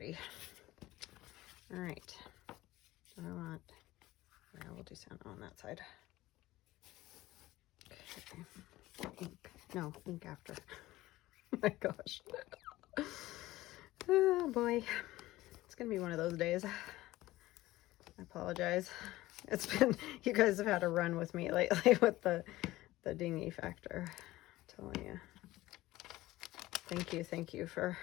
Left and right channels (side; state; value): right; quieter; 17.2 dB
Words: All right, I want, yeah, we'll do Santa on that side. Okay, ink, no, ink after. Oh my gosh. Oh boy, it's gonna be one of those days. I apologize. It's been, you guys have had a run with me lately with the dingy factor. I'm telling you. Thank you for